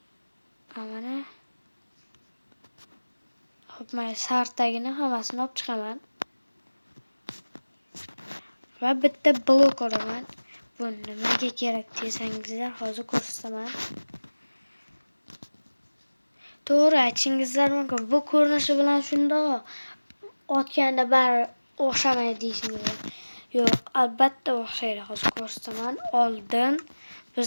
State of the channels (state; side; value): inverted; both; correlation -1.00